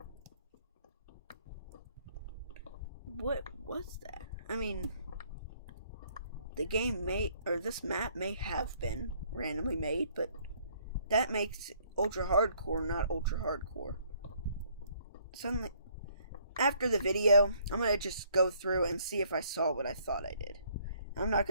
What was that? I mean, the game may, or this map may have been randomly made, but that makes ultra hardcore not ultra hardcore. Suddenly, after the video, I'm going to just go through and see if I saw what I thought I did. I'm not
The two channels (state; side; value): inverted; both; correlation -0.64